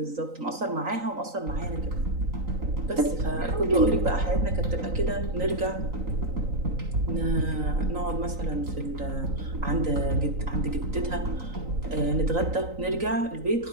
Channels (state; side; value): late; left; 3.9 ms